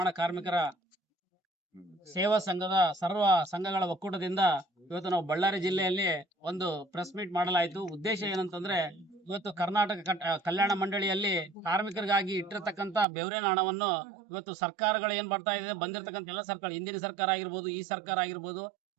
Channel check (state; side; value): drops out; left; at 13.1 s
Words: ಕಾರ್ಮಿಕರ ಸೇವಾ ಸಂಘದ ಸರ್ವ ಸಂಘಗಳ ಒಕ್ಕೂಟದಿಂದ ಇವತ್ತು ನಾವು ಬಳ್ಳಾರಿ ಜಿಲ್ಲೆಯಲ್ಲಿ ಒಂದು ಪ್ರೆಸ್ ಮೀಟ್ ಮಾಡಲಾಯಿತು. ಉದ್ದೇಶ ಏನಂತಂದ್ರೆ, ಇವತ್ತು ಕರ್ನಾಟಕ ಕಲ್ಯಾಣ ಮಂಡಳಿಯಲ್ಲಿ ಕಾರ್ಮಿಕರಿಗಾಗಿ ಇಟ್ಟಿರತಕ್ಕಂತ ಬೆವರಿನ ಹಣವನ್ನು ಇವತ್ತು ಸರ್ಕಾರಗಳು ಏನ್ ಬರ್ತಾ ಇದೆ, ಬಂದಿರತಕ್ಕಂತ ಎಲ್ಲ ಸರ್ಕಾರ, ಹಿಂದಿನ ಸರ್ಕಾರ ಆಗಿರ್ಬೋದು, ಈ ಸರ್ಕಾರ ಆಗಿರ್ಬೋದು,